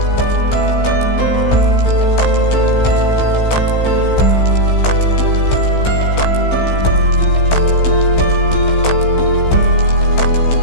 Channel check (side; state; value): right; late; 16 ms